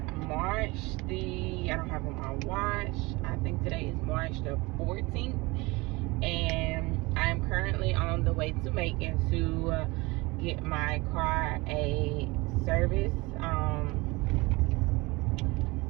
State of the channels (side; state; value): left; quieter; 23.7 dB